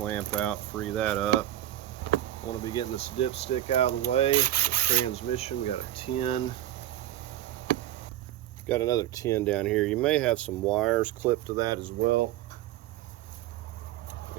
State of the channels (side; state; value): left; quieter; 13.4 dB